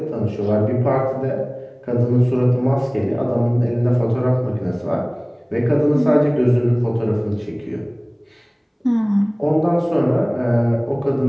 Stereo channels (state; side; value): identical; both; correlation 1.00